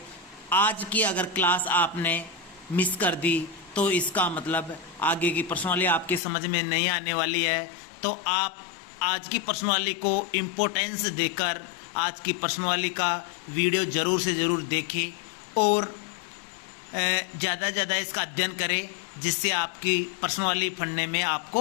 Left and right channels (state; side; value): drops out; right; at 6.2 s